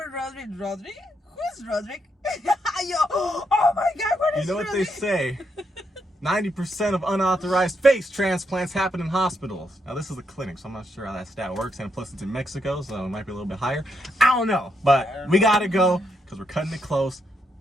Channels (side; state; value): both; normal; correlation 0.79